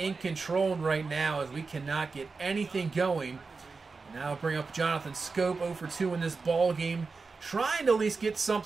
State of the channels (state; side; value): quieter; left; 4.4 dB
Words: control right now, as we cannot get anything going. And now I'll bring up Jonathan Scope, 0-for-2 in this ball game, trying to at least get